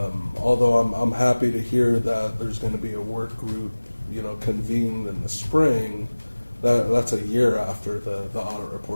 Although I'm happy to hear that there's going to be a work group, convened in the spring. That's a year after the audit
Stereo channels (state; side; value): inverted; both; correlation -1.00